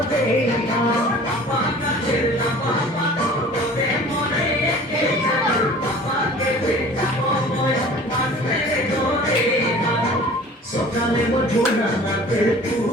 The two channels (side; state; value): both; normal; correlation 0.45